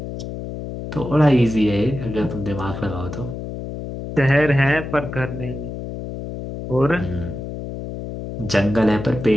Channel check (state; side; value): noise; left; hum, 8 dB below the sound